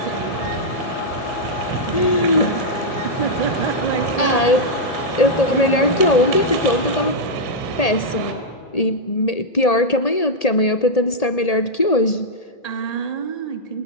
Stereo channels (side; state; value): right; late; 1.8 ms